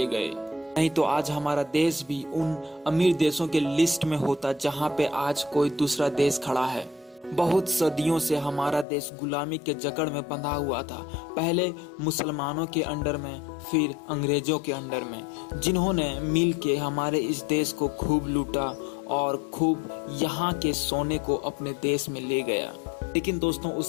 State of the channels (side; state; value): right; drops out; at 8.8 s